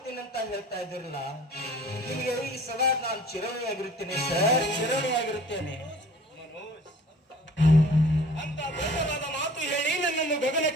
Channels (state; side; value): normal; both; correlation 0.48